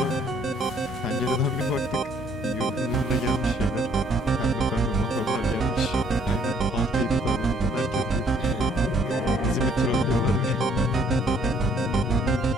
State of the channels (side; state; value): both; normal; correlation 0.63